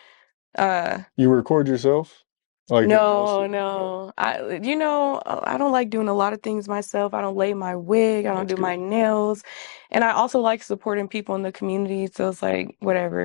uh You record yourself, like in all no, stuff. no. I don't like doing a lot of things myself. I don't lay my wig, I don't That's do good. my nails. And I also like supporting people in the community, so it's like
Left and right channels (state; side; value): silent; right; digital silence